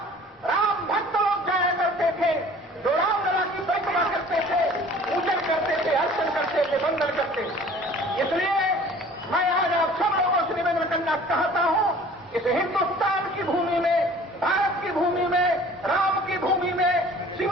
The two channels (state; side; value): normal; both; correlation 0.48